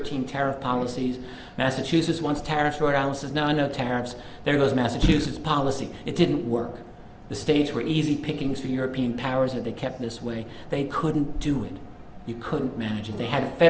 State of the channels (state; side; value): identical; both; correlation 1.00